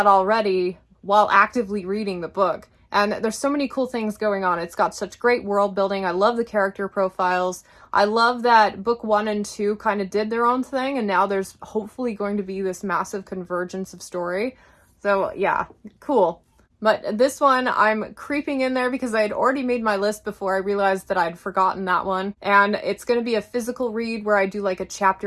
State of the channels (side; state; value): both; identical; correlation 1.00